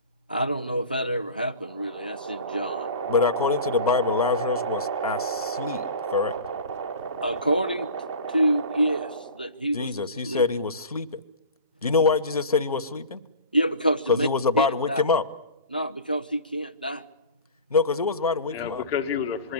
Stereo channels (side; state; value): both; inverted; correlation -0.37